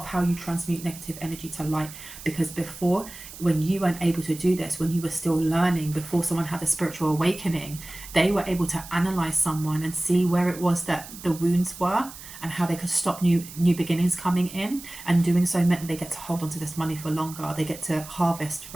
how you transmute negative energy to light. Because before, when you weren't able to do this, when you were still learning, before someone had a spiritual awakening, they were able to analyze someone and see where it was that the wounds were and how they could stop new beginnings coming in. And doing so meant they get to hold on to this money for longer. They get to harvest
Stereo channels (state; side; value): noise; right; hiss, 15 dB below the sound